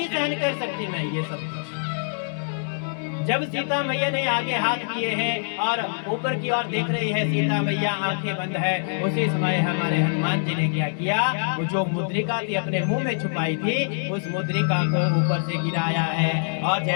सहन कर सकती मैं ये सब कुछ। जब सीता मैया ने आगे हाथ किए हैं और ऊपर की ओर देख रही है सीता मैया, आंखें बंद है, उसी समय हमारे हनुमान जी ने क्या किया, वो जो मुद्रिका थी अपने मुंह में छुपाई थी उस मुद्रिका को ऊपर से गिराया है, और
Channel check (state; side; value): silent; right; 62 dB below the other